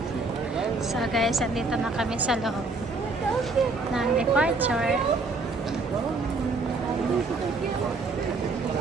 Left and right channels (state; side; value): quieter; left; 3.6 dB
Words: So, guys, andito na kami sa loob ng departure.